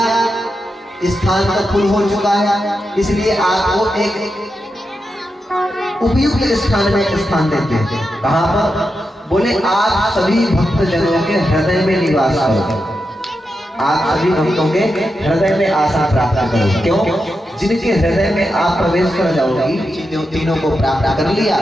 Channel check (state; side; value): normal; both; correlation 0.87